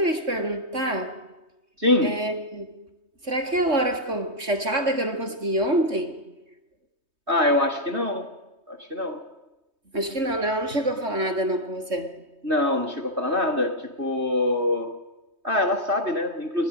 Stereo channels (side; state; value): left; late; 3.2 ms